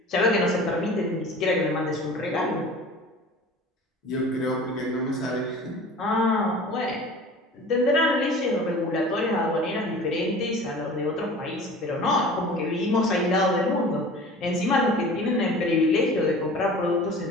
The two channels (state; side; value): normal; both; correlation 0.41